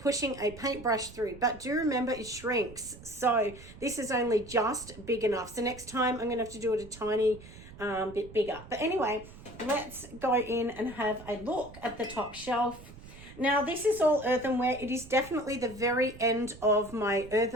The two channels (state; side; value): noise; right; rumble, 17 dB below the sound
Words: a paintbrush through, but do remember it shrinks. So this is only just big enough. So next time I'm gonna have to do it a tiny bit bigger. But anyway, let's go in and have a look at the top shelf. Now this is all earthenware. It is definitely the very end of my